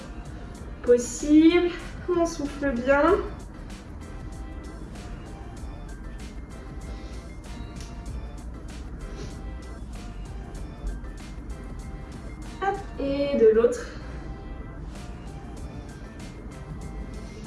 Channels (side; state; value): both; identical; correlation 1.00